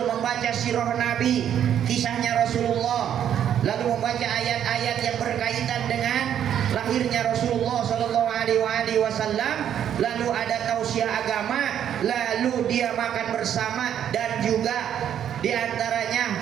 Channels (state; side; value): quieter; left; 9.7 dB